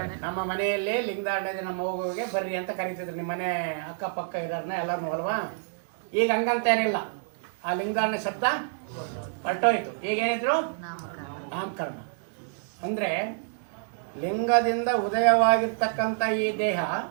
ನಮ್ಮ ಮನೆಯಲ್ಲಿ ಲಿಂಗಧಾರಣೆ ನಮ್ಮ ಮಗುವಿಗೆ ಬರ್ರಿ ಅಂತ ಕರೀತಿದ್ರು. ನಿಮ್ಮ ಮನೆ ಅಕ್ಕಪಕ್ಕ ಇರೋರ್ನ ಎಲ್ಲರೂ ಅಲ್ವಾ. ಈಗ ಹಂಗಂತೇನಿಲ್ಲ, ಆ ಲಿಂಗಧಾರಣೆ ಶಬ್ದ ಹೊರಟೋಯ್ತು. ಈಗೇನಿದ್ರು? ನಾಮಕರಣ. ಅಂದರೆ ಲಿಂಗದಿಂದ ಉದಯವಾಗಿರ್ತಕ್ಕಂಥ ಈ ದೇಹ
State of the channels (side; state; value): left; silent; digital silence